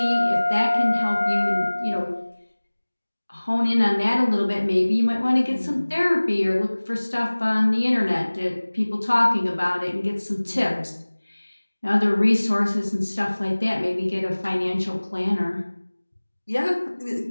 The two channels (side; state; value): both; inverted; correlation -1.00